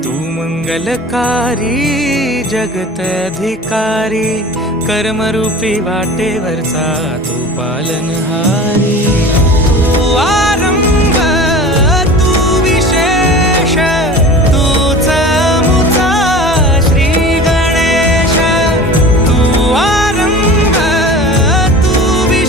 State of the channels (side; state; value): both; normal; correlation 0.38